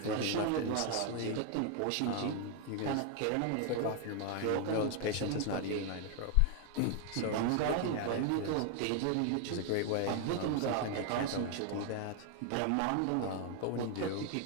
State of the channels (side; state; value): both; different; correlation 0.01